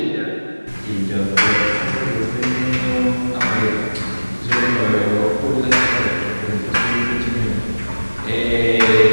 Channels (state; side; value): inverted; both; correlation -1.00